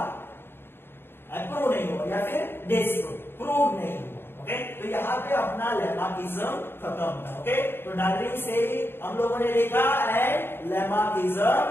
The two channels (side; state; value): right; late; 0.11 ms